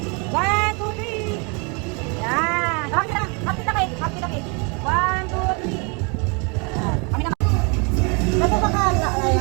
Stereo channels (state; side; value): quieter; left; 32.9 dB